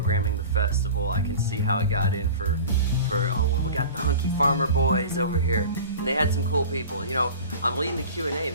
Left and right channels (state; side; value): inverted; both; correlation -0.37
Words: the festival. I can see how it got in for oh, well, we got the hunky farmer boys over here. And they had some cool people. You know, I'm leading the Q&A.